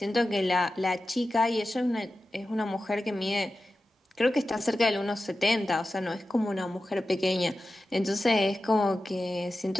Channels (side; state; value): both; normal; correlation 0.93